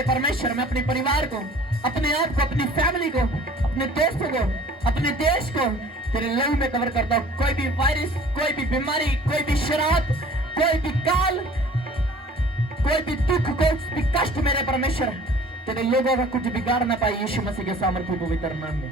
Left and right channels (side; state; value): both; normal; correlation 0.49